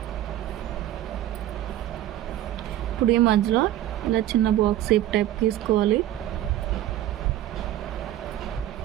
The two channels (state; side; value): quieter; left; 13.2 dB